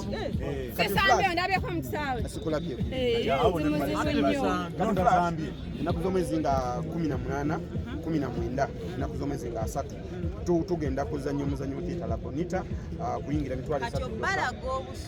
sesambe ndabye ko mutsawe Sikulabye. Kalonda zambye. Enaku z'omwezi nga 18, 19, enaku z'omwezi nga 3 tugenda kuzannya omuzannyo oguyita Labonita kuyingira mitwalo 3. kati obalaga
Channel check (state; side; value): identical; both; correlation 1.00